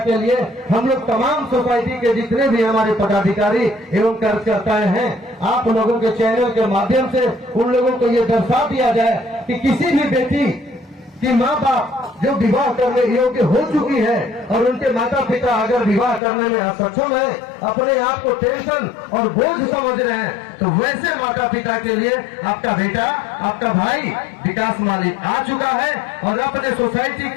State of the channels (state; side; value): drops out; right; at 16.2 s